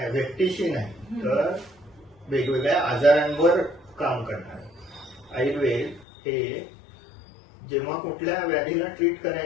व्यक्तीशी नाही तर वेगवेगळ्या आजारांवर काम करणार. आयुर्वेद हे जेव्हा कुठल्या व्याधीला ट्रीट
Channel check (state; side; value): drops out; right; at 6.1 s